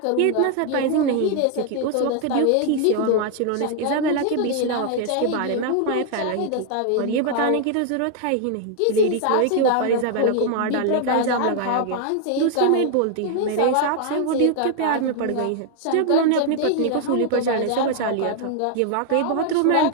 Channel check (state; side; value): different; both; correlation 0.00